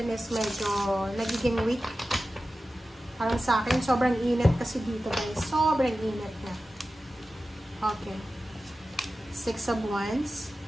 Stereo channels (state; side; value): normal; both; correlation 0.94